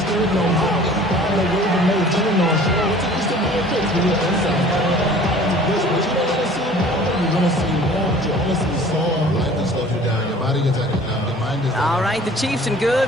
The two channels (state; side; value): normal; both; correlation 0.48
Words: All right, the Chiefs in